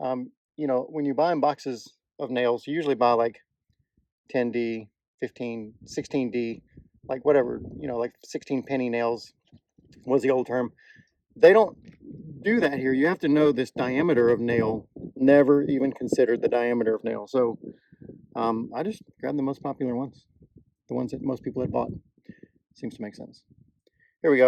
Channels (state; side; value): identical; both; correlation 1.00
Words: know, when you buy in boxes of nails, you usually buy like 10D, 15, 16D, like whatever, you know, like 16 penny nails was the old term. They don't do that here. You have to know this diameter of nail. Never even considered the diameter of nail. So I just grabbed the most popular ones, the ones that most people had bought. Seems to make sense. Here we